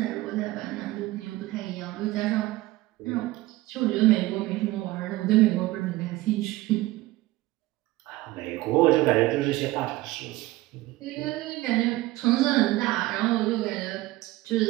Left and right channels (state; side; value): quieter; left; 18.3 dB